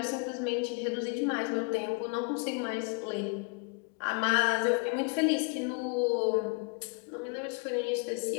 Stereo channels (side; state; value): right; quieter; 33.6 dB